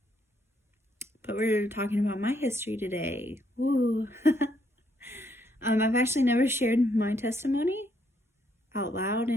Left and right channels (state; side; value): normal; both; correlation 0.73